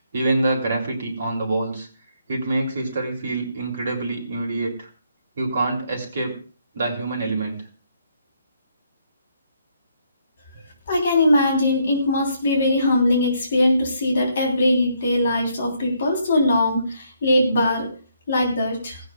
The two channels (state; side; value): inverted; both; correlation -0.72